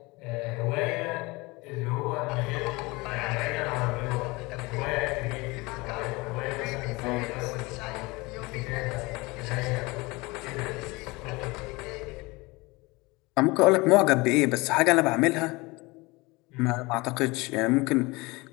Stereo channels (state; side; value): quieter; right; 23.7 dB